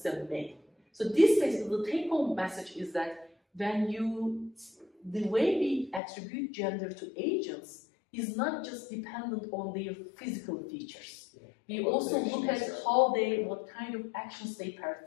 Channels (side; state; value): right; drops out; at 6.0 s